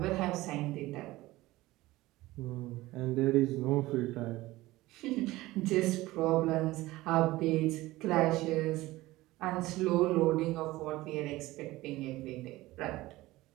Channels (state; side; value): quieter; left; 18.3 dB